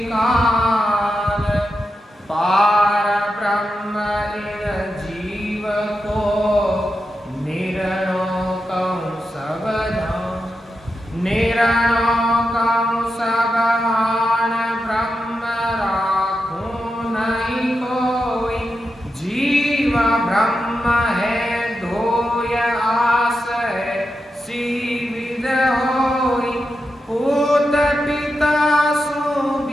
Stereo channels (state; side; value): normal; both; correlation 0.88